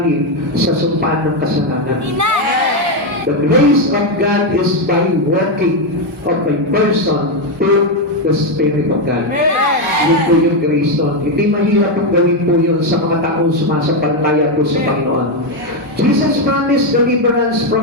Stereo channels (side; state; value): both; normal; correlation 0.05